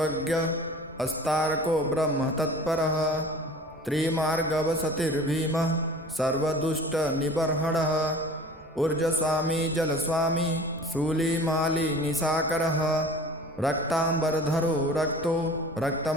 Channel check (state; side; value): normal; both; correlation 0.42